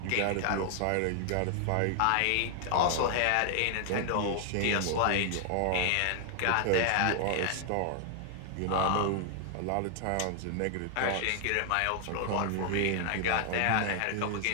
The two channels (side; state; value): both; different; correlation 0.00